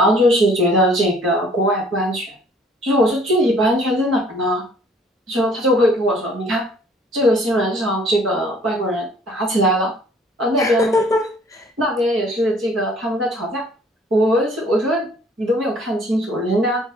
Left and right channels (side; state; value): both; normal; correlation 0.57